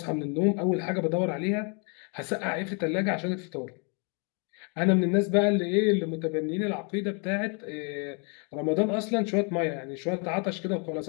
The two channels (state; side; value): quieter; right; 36.3 dB